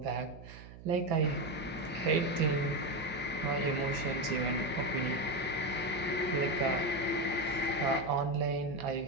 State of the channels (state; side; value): noise; right; hum, 16 dB below the sound